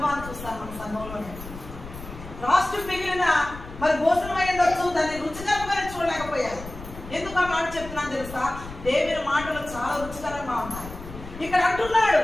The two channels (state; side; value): noise; left; rumble, 13 dB below the sound